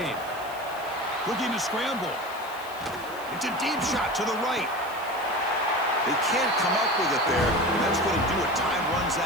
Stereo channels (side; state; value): left; noise; hiss, 20 dB below the sound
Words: Looking to scramble. It's a deep shot to the right. They can't come up with it there, and that's going to do it. Time runs